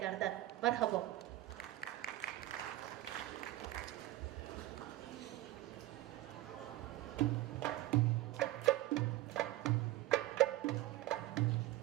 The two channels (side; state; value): left; quieter; 16.5 dB